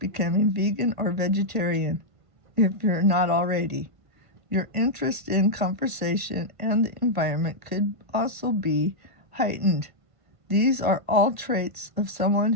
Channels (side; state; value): left; late; 1.5 ms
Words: vegan or vegetarian if you're not already. Your interest in conversation and the environment could also be heightened. These are all traits of someone